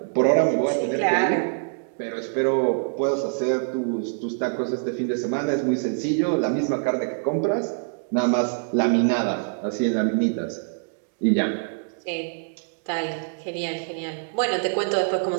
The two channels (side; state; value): left; silent; digital silence